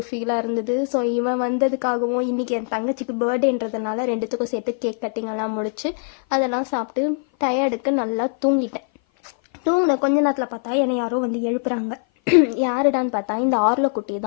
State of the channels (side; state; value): right; silent; 56 dB below the other